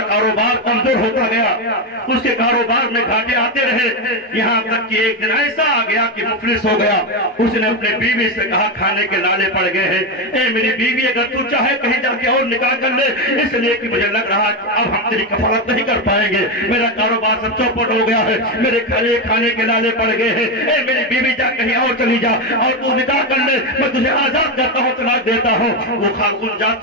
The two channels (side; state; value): both; normal; correlation 0.10